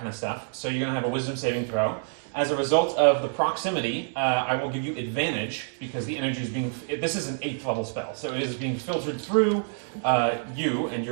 of stuff. So you're going to have a wisdom saving throw. As a result of the proximity, I will give you advantage because the energy is being. This is an 8th level spell, so it is being filtered through you and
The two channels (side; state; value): left; silent; digital silence